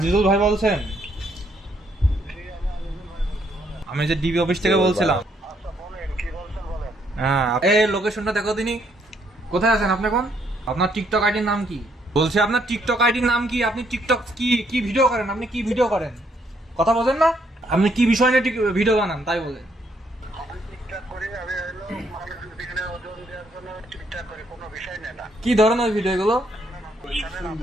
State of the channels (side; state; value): both; normal; correlation 0.71